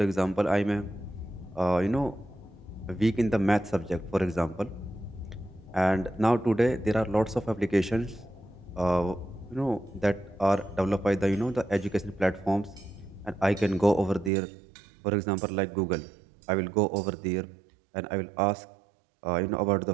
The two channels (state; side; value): drops out; left; at 14.3 s